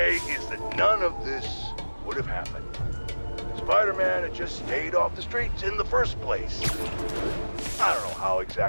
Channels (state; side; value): inverted; both; correlation -1.00